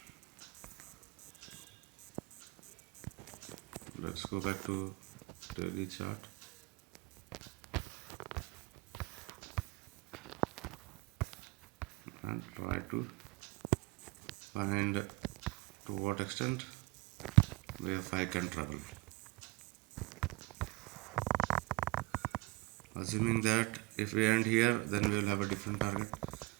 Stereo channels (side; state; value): left; quieter; 23.8 dB